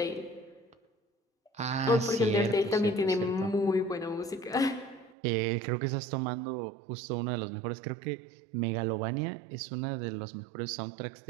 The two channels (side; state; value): left; drops out; at 5.1 s